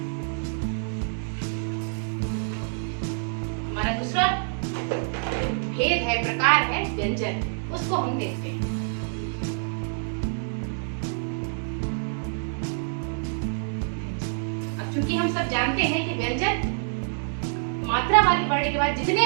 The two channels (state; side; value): silent; left; digital silence